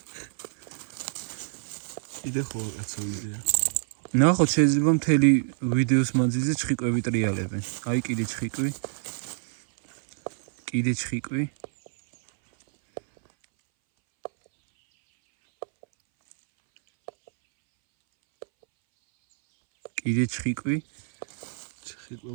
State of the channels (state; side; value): silent; left; 60 dB below the other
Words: იდე ხო კაცო იდეა. ნახოთ, შეიძლება მთელი ვიდეოს მანძილზე ჩხიკვები ტრიალებენ. აი კიდე ჩხიკვი. კიდე ჩხიკვი. კიდე ჩხიკვი.